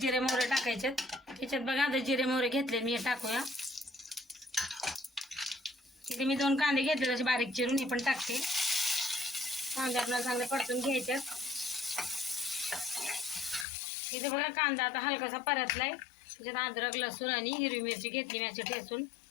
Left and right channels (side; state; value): right; drops out; at 13.7 s